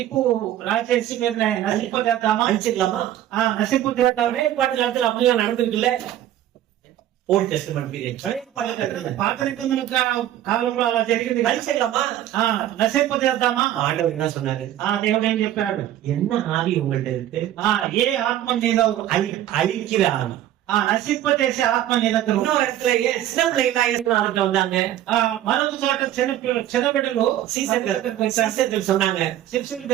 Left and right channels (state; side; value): quieter; left; 12.4 dB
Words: రాచేసి మీరు నశింపజేద్దామా? அடிச்சிடலாமா? నశింపజేద్దామా? ஒரே பாட்டு காலத்துல அப்படிலாம் நடந்திருக்குல்ல. ஓல்ட் டெஸ்டமென்ட் பீரியட் పాత నిబంధన కాలంలో అలా జరిగింది. அழிச்சிடலாமா? నశింపజేద్దామా? ஆண்டவர் என்ன சொன்னாரு? దేవుడు ఏం చెప్పాడు? என்ன ஆவி உங்கள்ட்ட இருக்கு? ఏ ఆత్మ నీలో அழிக்கிற ஆவி. నశింపజేసే ఆత్మ నీ దగ్గర. இன்னொரு இடத்துல சின்ன பிள்ளைங்களா இயேசுநாதர்கிட்ட வந்தாங்க. మరొక చోట చిన్న బిడ్డలు சீசர்கள் சொன்னாங்க, శిష్యులు